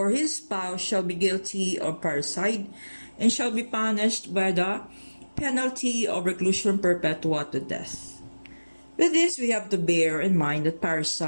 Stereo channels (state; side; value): inverted; both; correlation -1.00